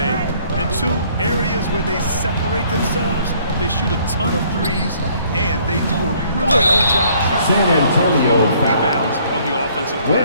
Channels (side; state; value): both; inverted; correlation -0.61